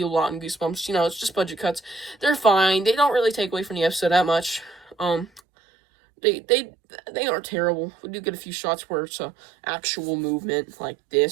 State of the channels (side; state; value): left; drops out; at 5.4 s